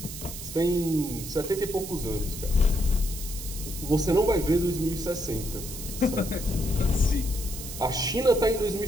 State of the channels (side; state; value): right; noise; hiss, 10 dB below the sound